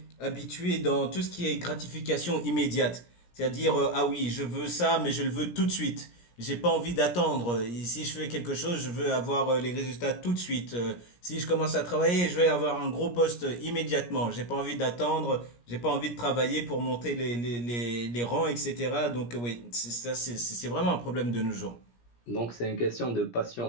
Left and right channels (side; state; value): right; late; 17 ms